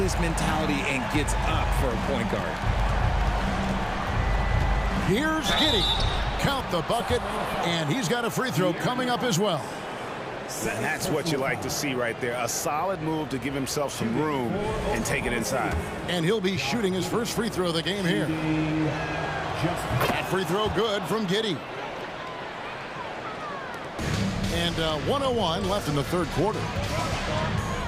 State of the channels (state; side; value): identical; both; correlation 1.00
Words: mentality and gets up for a point guard. Here's Giddy. Count the bucket, and he's got a free throw coming up as well. And that's what you like to see right there. A solid move to give himself some room and take it inside. And he'll be shooting his first free throw of the game here. That free throw good from Giddy. And 1:01 left in the third quarter.